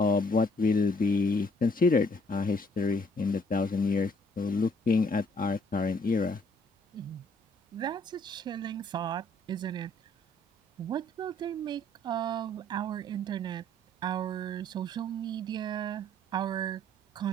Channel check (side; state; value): both; normal; correlation 0.63